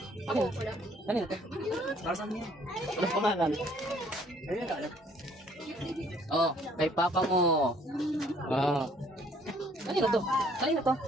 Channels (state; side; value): normal; both; correlation 0.61